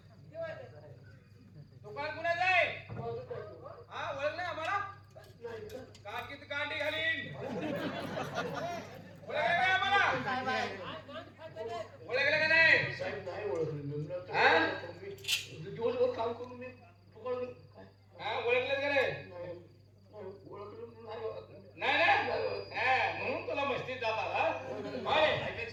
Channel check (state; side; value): identical; both; correlation 1.00